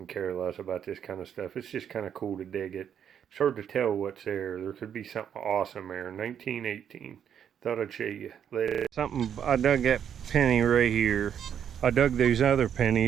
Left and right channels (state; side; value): quieter; left; 8.6 dB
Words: care less about this kind of stuff. It's just kind of cool to dig it. It's hard to tell what's there. There could be something awesome there. 1918. Thought I'd show you later. Something, I dug that penny right here. I dug those other